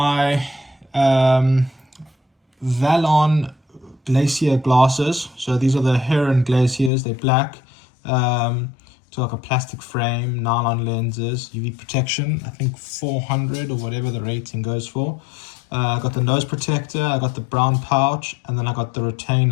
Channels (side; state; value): right; drops out; at 6.9 s